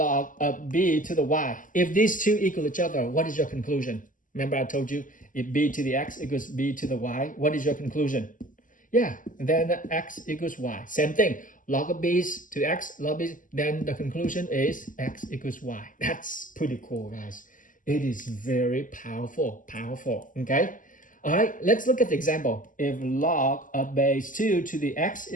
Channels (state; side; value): late; right; 0.38 ms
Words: of b to the y. If these two equal each other, what is your conclusion? Remember I told you, if b to the x equals b to the y, what is your conclusion? Yeah, then x equals y. Same thing, log of b to x, log b, then the conclusion is x equals y. That's pretty cool, guys. It is very powerful, okay? All right, let's look at the example. If log of base 2 to the x